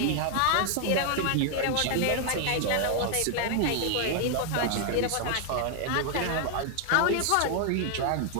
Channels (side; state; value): both; different; correlation 0.00